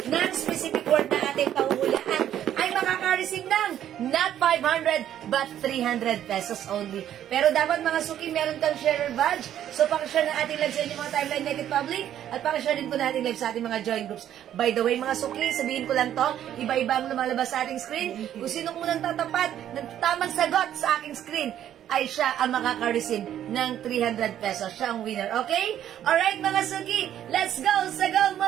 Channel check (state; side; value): quieter; left; 11.0 dB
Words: ng specific word na ating pahuhulaan ay makaka-receive ng not 500 but 300 pesos only. Pero dapat mga suki, meron kang sharer badge. So pakishare ng ating live sa inyong mga timeline naked public at pakishare din po natin live sa ating mga join groups. By the way mga suki, sabihin ko lang to, iba-iba ang lumalabas sa ating screen. Kung sino unang tatapat ng tamang sagot sa aking screen, ay siya ang makaka-receive ng 300 pesos. Siya ang winner, okay? Alright mga suki, let's go! Sagaw